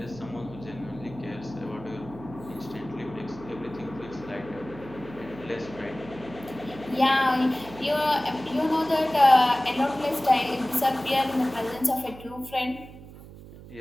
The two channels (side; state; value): right; noise; hum, 17 dB below the sound